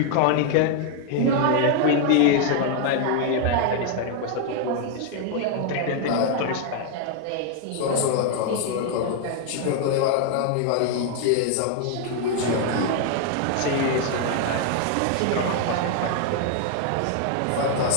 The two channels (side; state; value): both; different; correlation 0.00